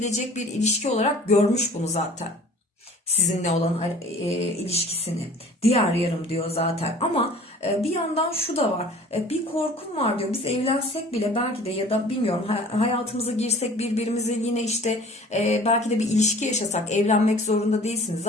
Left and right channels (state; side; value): normal; both; correlation 0.48